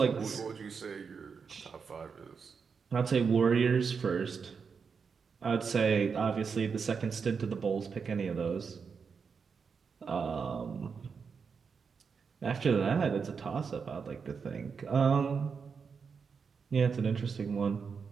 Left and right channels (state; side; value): quieter; left; 5.8 dB